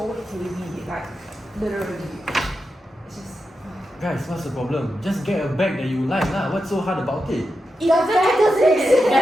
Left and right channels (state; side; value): normal; both; correlation 0.88